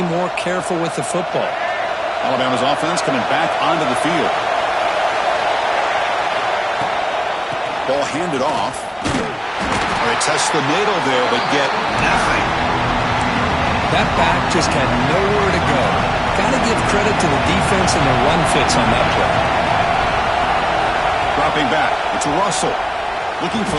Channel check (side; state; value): both; identical; correlation 1.00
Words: more careful with the football. Alabama's offense coming back onto the field. Ball handed off. They test the middle there, but get nothing. That back just had nowhere to go. Got to give credit to the defense and the run fits on that play. Dropping back. It's Russell. Looking